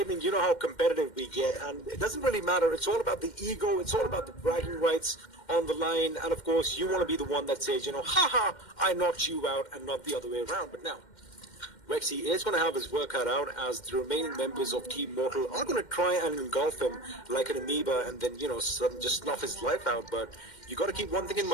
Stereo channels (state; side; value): late; right; 2.1 ms